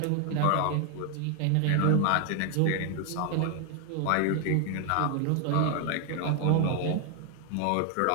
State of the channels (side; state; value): both; different; correlation 0.00